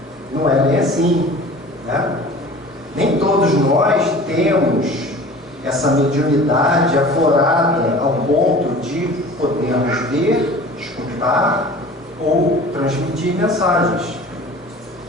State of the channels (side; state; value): both; normal; correlation 0.42